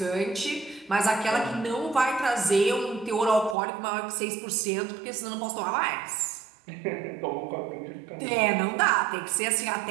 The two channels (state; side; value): drops out; left; at 3.6 s